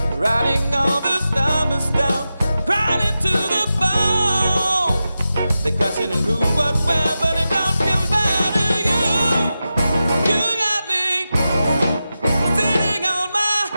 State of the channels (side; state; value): both; inverted; correlation -0.92